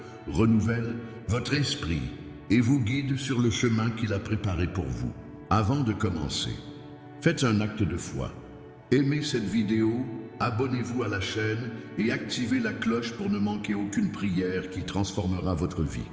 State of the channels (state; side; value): identical; both; correlation 1.00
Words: renouvelle votre esprit et vous guide sur le chemin qu'il a préparé pour vous. Avant de commencer, faites un acte de foi. Aimez cette vidéo, abonnez-vous à la chaîne et activez la cloche pour ne manquer aucune prière qui transformera votre vie.